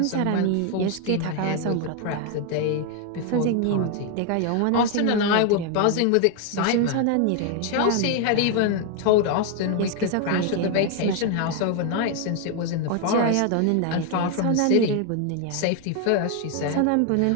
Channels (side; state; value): both; different; correlation 0.00